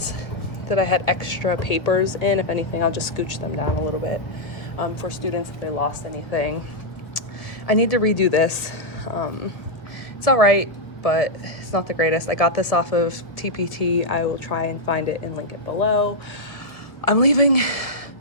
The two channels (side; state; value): right; late; 1.3 ms